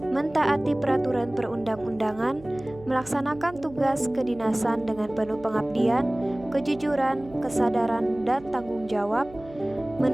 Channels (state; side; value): noise; right; hum, 20 dB below the sound